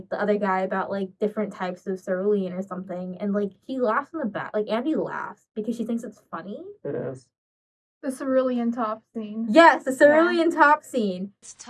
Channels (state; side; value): identical; both; correlation 1.00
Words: the other guy about like different types of cerulean or something, and like he laughs in the back. Like Andy laughs because she thinks it's funny. It is. The cerulean top scene. Yes, the cerulean top scene. It's a